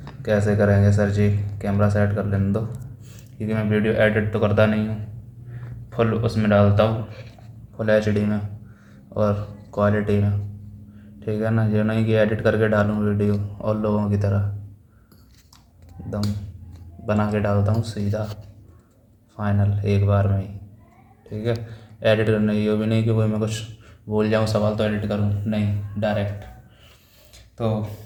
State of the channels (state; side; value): identical; both; correlation 1.00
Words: कैसे करेंगे। सर जी कैमरा सेट कर लेने दो, क्योंकि मैं वीडियो एडिट तो करता नहीं हूँ, फुल उसमें डालता हूँ, फुल HD में और क्वालिटी में। ठीक है ना, ये नहीं कि एडिट करके डालूँ वीडियो और लोगों की तरह एकदम बना के डालता हूँ सीधा फाइनल एक बार में ही। ठीक है, एडिट करना ये भी नहीं कि कोई मैं कुछ बोल जाऊँ सवाल तो एडिट करूँ, नहीं, डायरेक्ट। तो